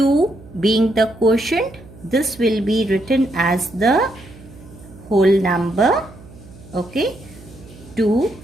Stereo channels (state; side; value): noise; right; hum, 20 dB below the sound